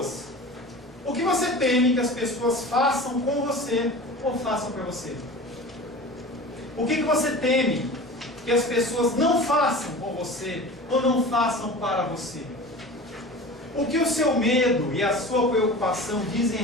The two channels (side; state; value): both; normal; correlation 0.36